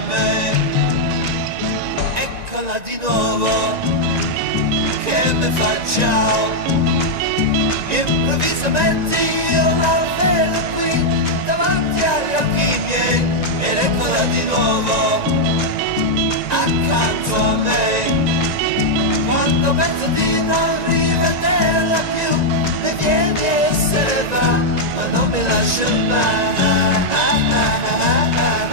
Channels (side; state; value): left; late; 1.9 ms